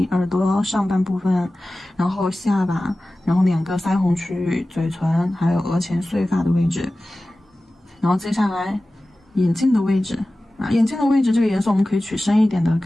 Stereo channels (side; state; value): both; normal; correlation 0.96